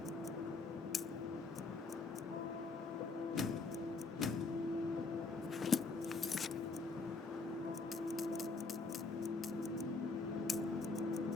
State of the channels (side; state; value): right; quieter; 3.9 dB